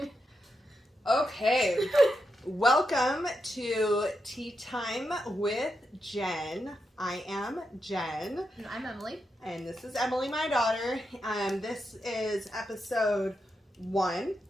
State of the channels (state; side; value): normal; both; correlation 0.85